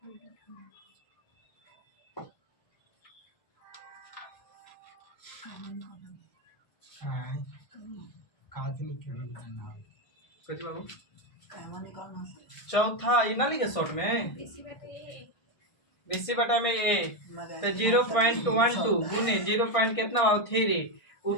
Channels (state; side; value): late; right; 1.5 ms